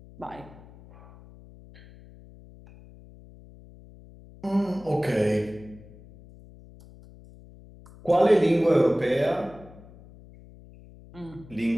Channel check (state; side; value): noise; left; hum, 21 dB below the sound